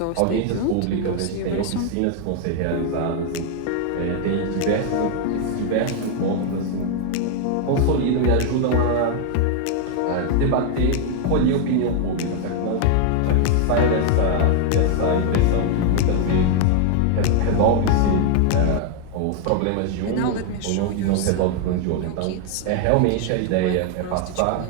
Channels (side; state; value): both; different; correlation 0.00